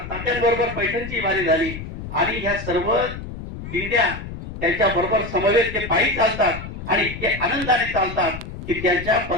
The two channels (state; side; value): noise; left; rumble, 10 dB below the sound